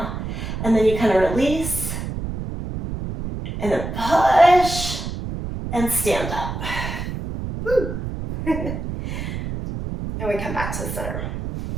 And then you kind of release, and then push, and stand up. Woo. And we come back to the center.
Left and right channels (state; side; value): noise; right; rumble, 6 dB below the sound